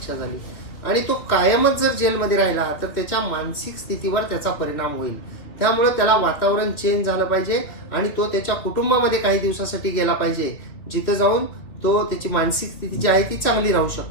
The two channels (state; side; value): late; right; 2.8 ms